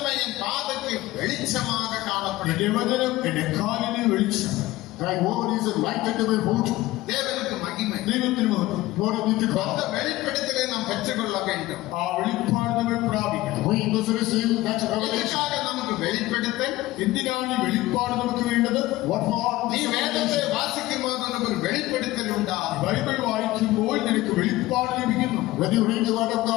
என் பாதைக்கு வெளிச்சமாக காணப்படும். എന്റെ വചനം എന്റെ കാലിന് വെളിച്ചം. Thy word is a light unto my foot. தேவனுக்கு மகிமை. ദൈവത്തിന് മഹത്വം. Glory be to அந்த God. வெளிப்படுத்தலை நாம் பெற்றுக்கொள்ள வேண்டும். ആ വെളിപ്പാട് നമ്മൾ പ്രാപിക്കണം. We must receive that revelation. இதற்காக நமக்கு வெளிப்படுத்தல். എന്തിനാണ് ഈ വെളിപ്പാട് നമുക്ക് വേണ്ടത്? What for? நீ வேதத்தை வாசிக்கும் போது உனக்கு ஒரு வெளிப்படுத்தல் உண்டாகும். ബൈബിൾ വായിക്കുമ്പോൾ നിനക്ക് വെളിപ്പാട് ലഭിക്കുന്നു. When you read the word of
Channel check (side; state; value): right; quieter; 17.6 dB